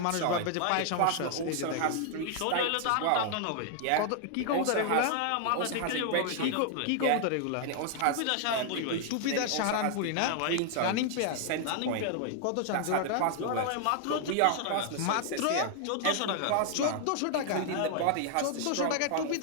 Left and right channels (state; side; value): different; both; correlation 0.00